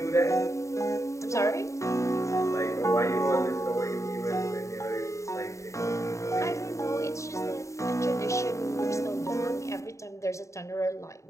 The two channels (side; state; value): right; late; 0.15 ms